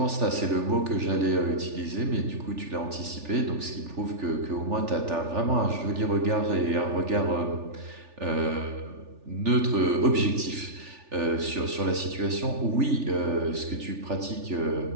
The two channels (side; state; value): left; late; 3.4 ms